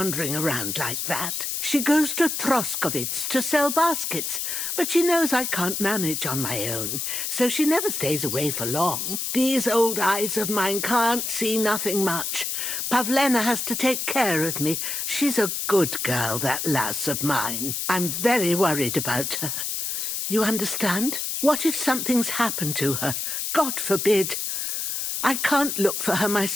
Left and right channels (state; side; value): noise; left; hiss, 2 dB below the sound